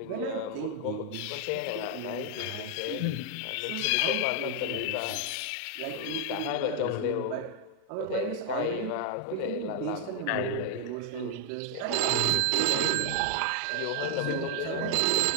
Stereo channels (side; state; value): both; different; correlation 0.00